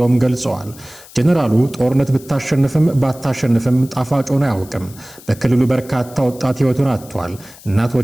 ገልጸዋል። ጀነራሉ ጦርነት ብታሸንፍም ባታሸንፍም ጣፋጭ ሆኖ አያውቅም። በክልሉ በርካታ ወጣት ህይወቱን አጥቷል።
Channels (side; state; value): left; noise; hiss, 21 dB below the sound